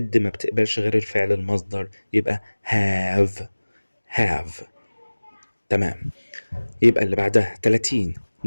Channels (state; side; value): inverted; both; correlation -1.00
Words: ما بتقبلش غير الفعل المصدر، يبقى have. تمام. يبقى اللي بعدها 30.